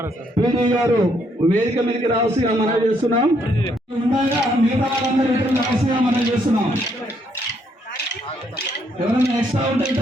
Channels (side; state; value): both; normal; correlation 0.72